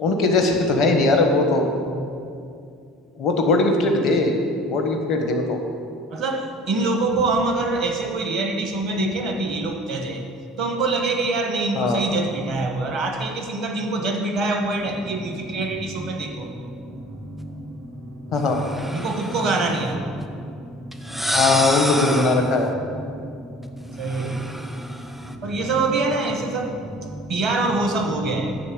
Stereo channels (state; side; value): normal; both; correlation 0.44